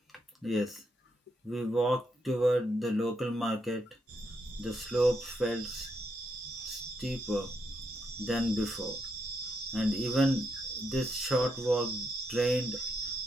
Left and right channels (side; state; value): both; normal; correlation 0.79